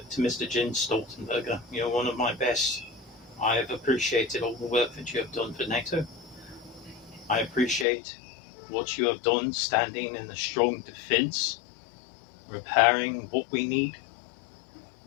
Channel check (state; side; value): drops out; right; at 7.9 s